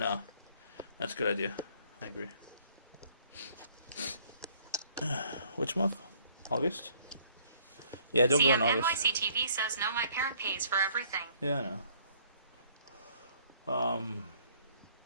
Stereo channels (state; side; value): inverted; both; correlation -0.61